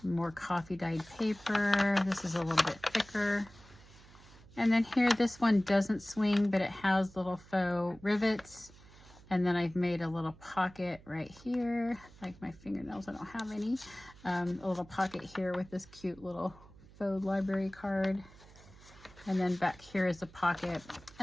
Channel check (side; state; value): right; noise; hum, 22 dB below the sound